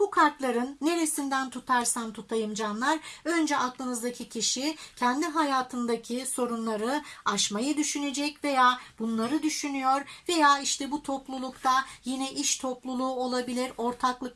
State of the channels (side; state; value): both; identical; correlation 1.00